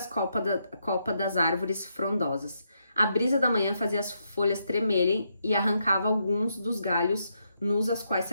copas das árvores frondosas. A brisa da manhã fazia as folhas tremerem e arrancava alguns dos galhos nus aos quais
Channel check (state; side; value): inverted; both; correlation -0.79